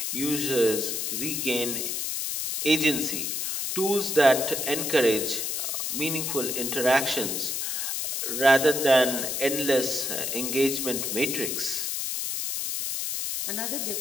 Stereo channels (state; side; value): noise; left; hiss, 2 dB below the sound